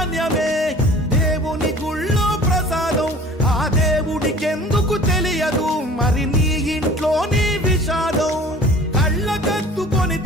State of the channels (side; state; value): both; normal; correlation 0.46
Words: దేవుని గుళ్ళో ప్రసాదం, ఆ దేవుడికెందుకు తెలియదు మరి నీ ఇంట్లో నీ విషాదం. కళ్ళకత్తుకొని